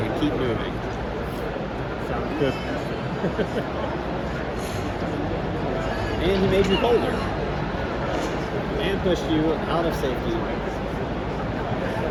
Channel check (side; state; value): both; identical; correlation 1.00